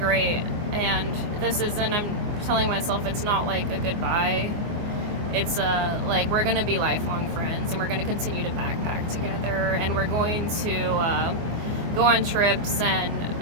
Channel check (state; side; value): late; left; 24 ms